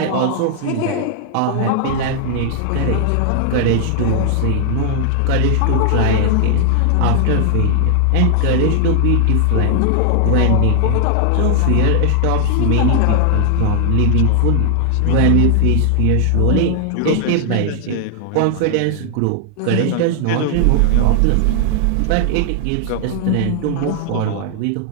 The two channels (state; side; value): different; both; correlation 0.00